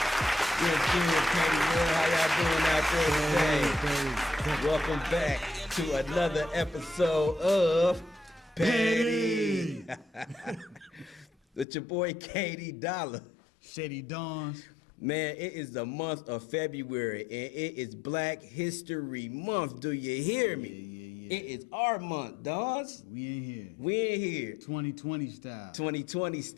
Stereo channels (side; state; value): right; drops out; at 11.7 s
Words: How y'all doing out there today? Welcome back to another episode of Petty. With your boy KD Dollar. Shady Dawns. Man, it is the month of February and it is Black History Month. Do you hear me? Yeah. It is our month, Dawns. We in here. We in here. 2020 style. 2020